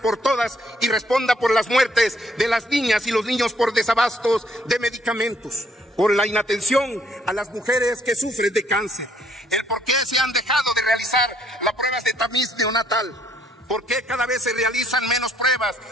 todas y responda por las muertes de las niñas y los niños por desabastos de medicamentos, por la inatención a las mujeres que sufren de cáncer, el por qué se han dejado de realizar las pruebas de tamiz neonatal, por qué cada vez se realizan menos pruebas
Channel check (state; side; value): normal; both; correlation 0.67